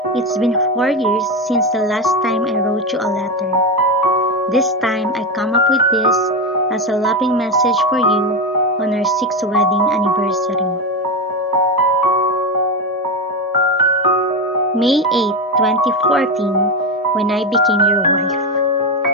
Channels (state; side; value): normal; both; correlation 0.14